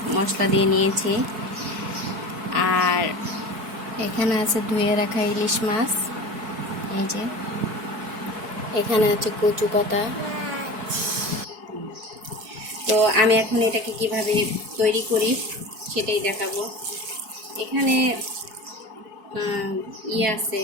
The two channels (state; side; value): late; left; 4.6 ms